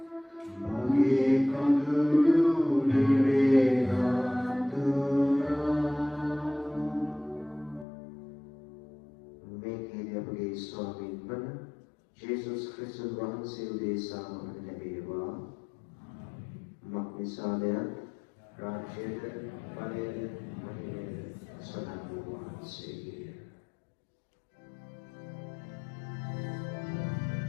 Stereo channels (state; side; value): drops out; right; at 7.9 s